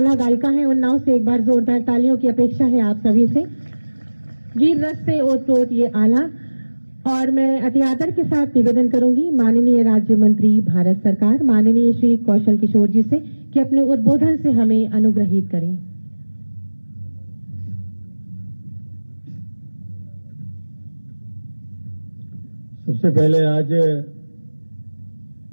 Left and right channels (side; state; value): both; inverted; correlation -1.00